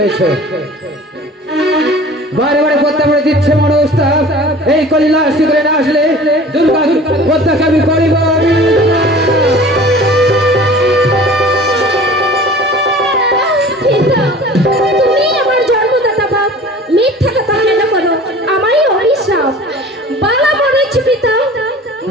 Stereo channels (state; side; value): normal; both; correlation 0.43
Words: বারে বারে পদ্মা করে দিচ্ছে মনস্তাব, এই কলিলাস করে না আসলে দুর্গা পদ্মাকে আমি করিব। তুমি আমার জন্মদাতা বাপ, মিথ্যা কথা কেন করো? আমারই অভিশাপ বালা বলেছি পিতা,